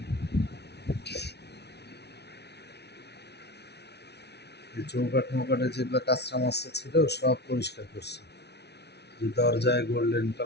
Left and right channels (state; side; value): late; right; 0.49 ms